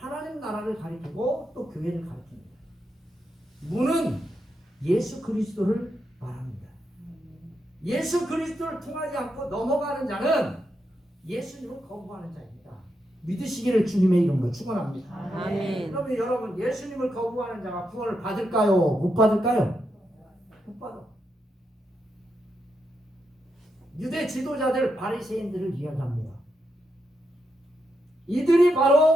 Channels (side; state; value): both; normal; correlation 0.83